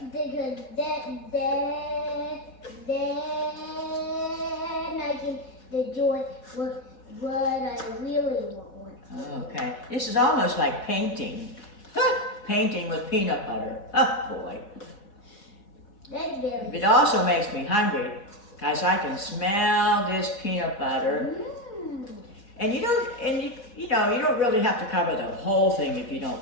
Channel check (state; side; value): late; right; 4.1 ms